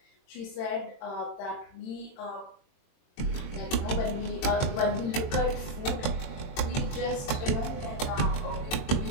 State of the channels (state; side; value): late; right; 23 ms